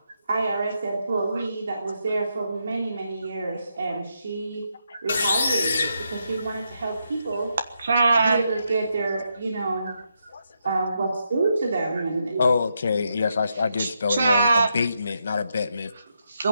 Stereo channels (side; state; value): both; inverted; correlation -0.81